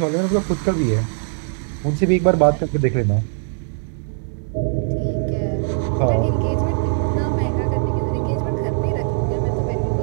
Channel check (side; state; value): left; silent; digital silence